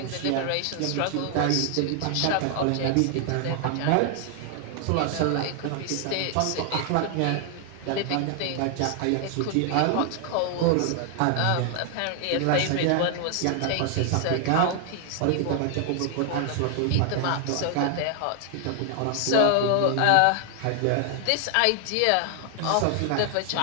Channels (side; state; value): both; different; correlation 0.00